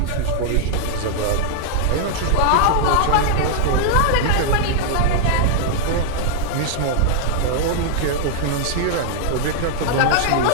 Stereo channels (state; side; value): different; both; correlation -0.01